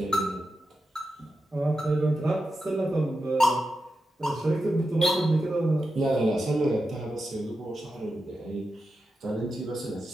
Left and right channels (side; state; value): both; normal; correlation 0.89